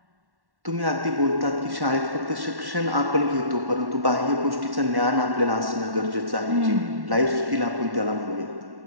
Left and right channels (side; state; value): left; late; 1.1 ms